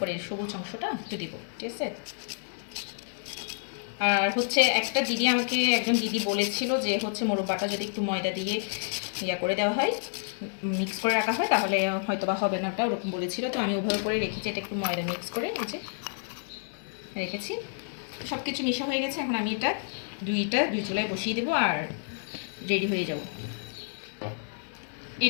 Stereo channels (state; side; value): silent; right; digital silence